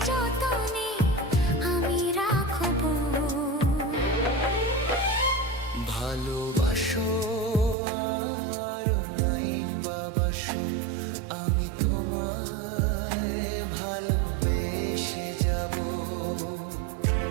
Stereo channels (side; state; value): left; drops out; at 7.8 s